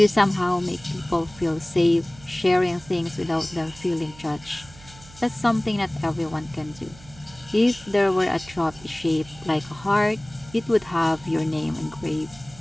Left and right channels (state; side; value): noise; right; hum, 21 dB below the sound